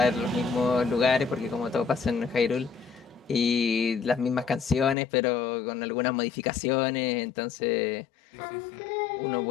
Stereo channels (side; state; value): right; drops out; at 5.0 s